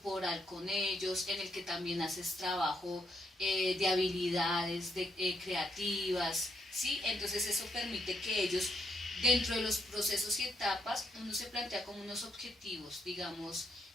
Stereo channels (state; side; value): normal; both; correlation 0.77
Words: con ellos, en el que también haces trabajo de habilidades creativas, ¿sí? Entonces eso permite que ellos, dentro de los procesos y etapas, uno se plantea como unos objetivos, digamos,